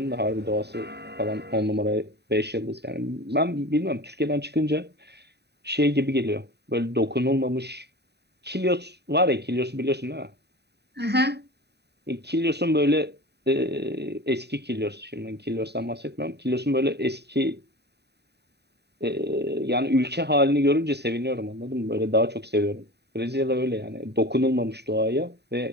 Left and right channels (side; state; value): left; late; 0.48 ms